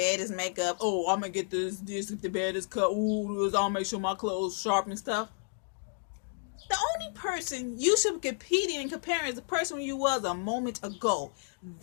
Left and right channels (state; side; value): silent; right; digital silence